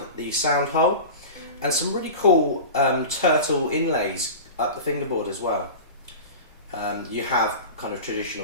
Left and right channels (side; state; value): both; inverted; correlation -0.31